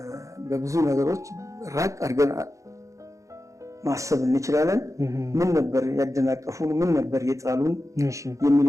በብዙ ነገሮች ራቅ አድርገን ማሰብ እንችላለን። ምን ነበር ያደናቀፉን፣ ምን ነበር የጣሉን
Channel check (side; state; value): left; late; 0.15 ms